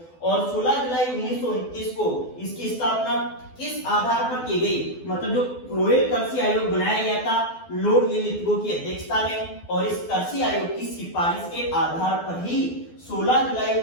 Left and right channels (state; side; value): late; right; 12 ms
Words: और 16 जुलाई 1929 को इसकी स्थापना किस आधार पर की गई, मतलब जो रॉयल कृषि आयोग बनाया गया था लॉर्ड लिलिथगो की अध्यक्षता में, और इस कृषि आयोग की सिफारिश के आधार पर ही 16 जुलाई